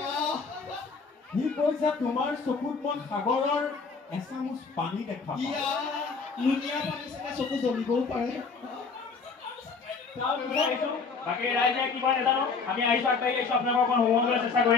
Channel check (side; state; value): right; quieter; 4.9 dB